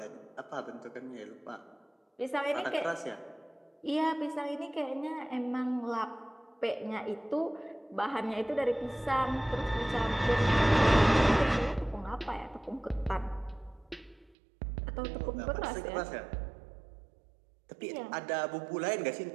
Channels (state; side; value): drops out; left; at 14.4 s